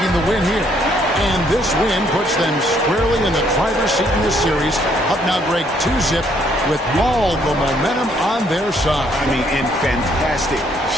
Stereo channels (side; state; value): both; normal; correlation 0.68